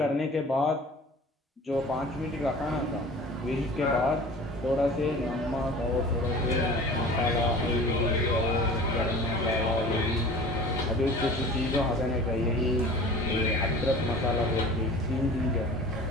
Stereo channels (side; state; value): both; normal; correlation 0.42